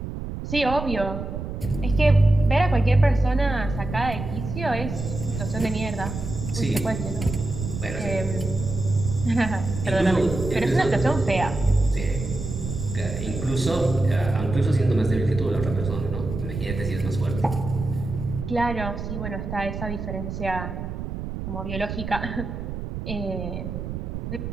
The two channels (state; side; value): noise; right; rumble, 6 dB below the sound